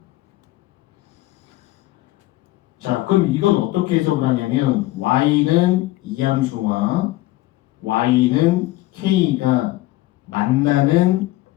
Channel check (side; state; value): right; quieter; 17.6 dB